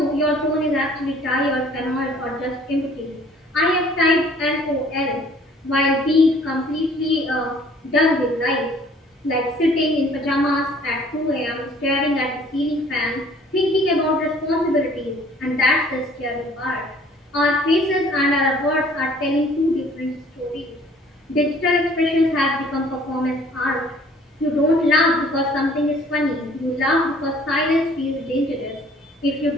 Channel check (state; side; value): normal; both; correlation 0.55